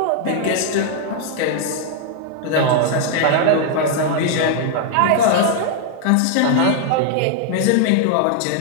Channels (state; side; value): different; both; correlation -0.01